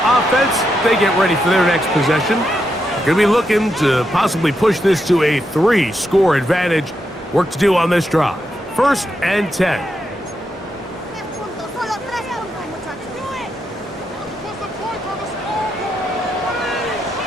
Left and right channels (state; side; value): normal; both; correlation 0.83